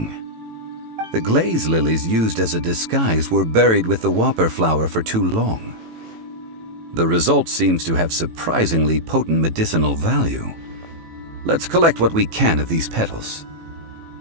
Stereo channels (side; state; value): left; late; 18 ms